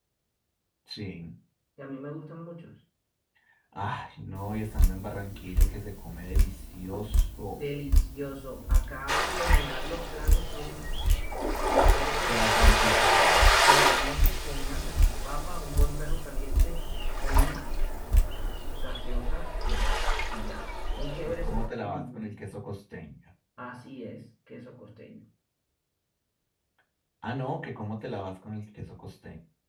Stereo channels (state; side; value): identical; both; correlation 1.00